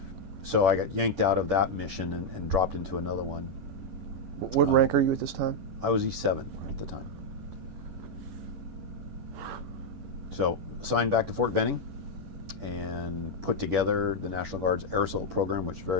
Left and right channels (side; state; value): left; late; 11 ms